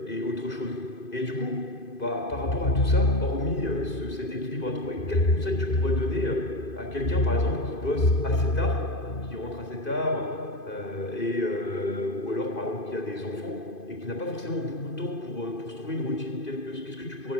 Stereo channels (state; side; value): late; right; 2.5 ms